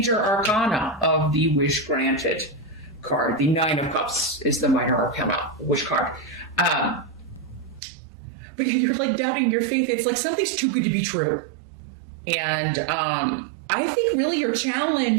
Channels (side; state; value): left; drops out; at 7.8 s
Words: arcana of the wish granted card. The Nine of Cups is the minor arcana wish card. But you're like doubting your faith. It's like something's too good to be true. And I think really your